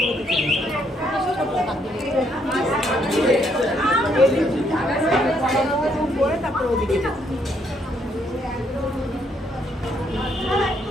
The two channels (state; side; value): normal; both; correlation 0.72